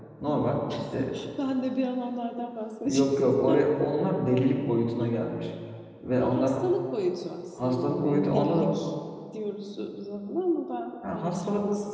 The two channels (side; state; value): both; identical; correlation 1.00